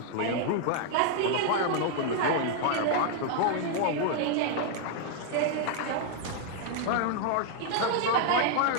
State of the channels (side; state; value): both; different; correlation 0.00